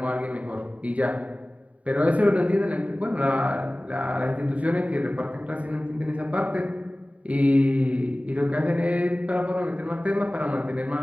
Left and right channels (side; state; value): left; late; 0.067 ms